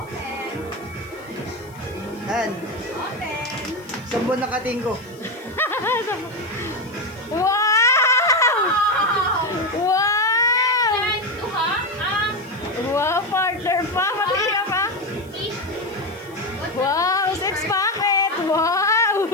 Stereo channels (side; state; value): left; noise; hiss, 26 dB below the sound